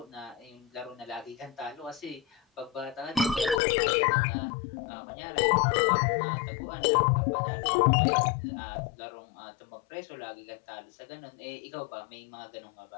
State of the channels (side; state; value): right; drops out; at 3.6 s